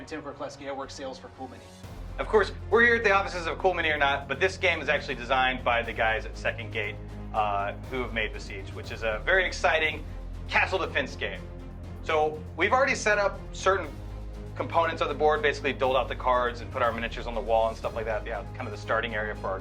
Tim Krokleski. I work sales for Cool Mini. Of course, we're here at the offices of Cool Mini or Not, but this game is actually designed by the guys at Second Gate who have made Besiege, which is a very exciting castle defense game. So we've already set up certain components of the board, basically doled out the cards and put our miniatures on the wall and stuff like that. Yeah, kind of the starting area for our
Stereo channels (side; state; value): both; identical; correlation 1.00